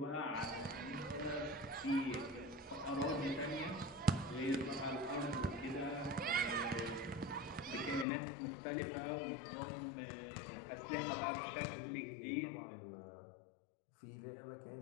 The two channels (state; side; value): drops out; right; at 8.1 s